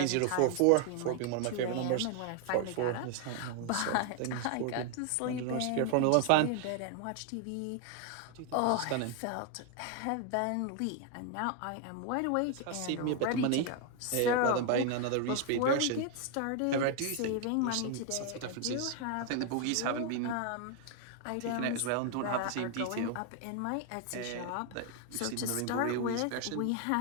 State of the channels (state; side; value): different; both; correlation 0.00